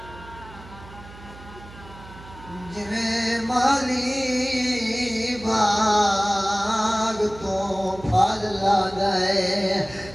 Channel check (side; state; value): right; noise; hum, 18 dB below the sound